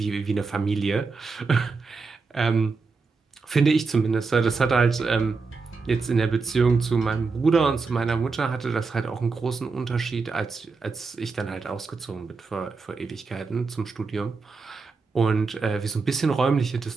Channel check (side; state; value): left; quieter; 4.4 dB